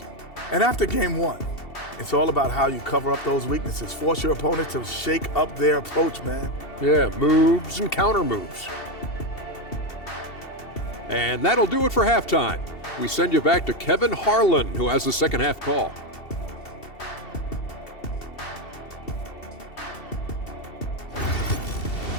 And after game one, it's all about how you cover up those weaknesses. Force your opponent to shake up their approach, man. Yeah, moves and counter moves. And that'll do it for halftime. We send you back to Kevin Harlan, who has the second half call.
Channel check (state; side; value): late; right; 2.7 ms